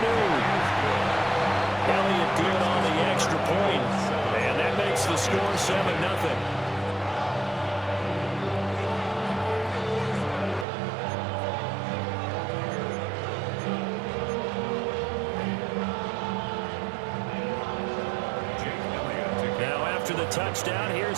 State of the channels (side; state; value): left; drops out; at 10.7 s